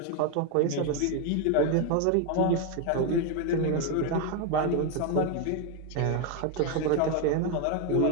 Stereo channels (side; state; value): both; different; correlation 0.01